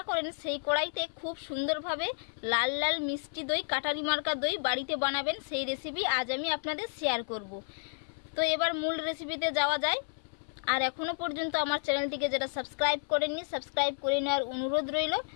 করেন সেই কড়াইতে খুব সুন্দরভাবে লাল লাল মিষ্টি দই, কাটারি মার্কা দই বাড়িতে বানাবেন, সেই রেসিপি আজ আমি আপনাদের শেয়ার করব। তো এবার মূল রেসিপিতে যাওয়া যায়। আর এখনো পর্যন্ত আমার চ্যানেলটিকে যারা সাবস্ক্রাইব করেননি, সাবস্ক্রাইব করে নেওয়ার অনুরোধ রইল।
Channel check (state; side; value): silent; right; 57 dB below the other